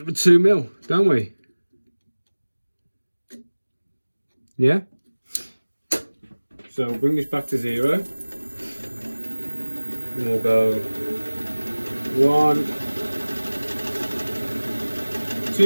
2 mil, don't we? Yeah. So bring this back to 0. And we'll go 1,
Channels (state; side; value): inverted; both; correlation -1.00